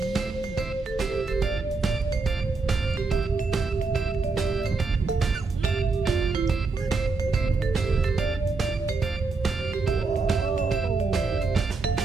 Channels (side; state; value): left; quieter; 4.1 dB